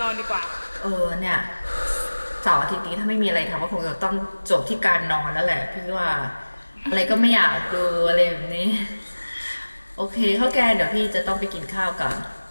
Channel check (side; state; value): both; inverted; correlation -1.00